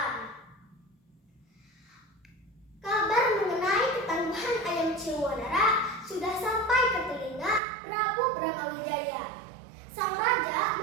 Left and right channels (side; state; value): left; drops out; at 7.6 s